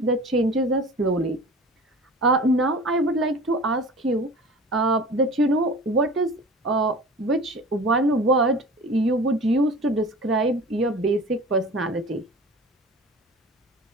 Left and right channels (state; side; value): normal; both; correlation 0.39